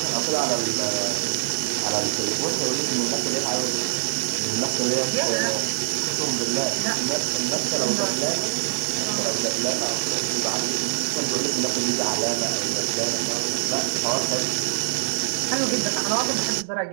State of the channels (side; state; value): left; silent; digital silence